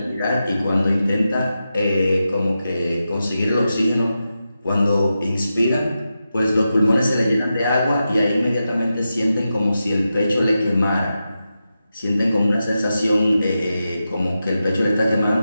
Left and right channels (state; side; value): inverted; both; correlation -0.90